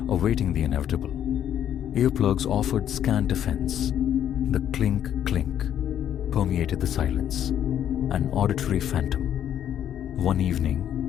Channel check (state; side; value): quieter; right; 10.2 dB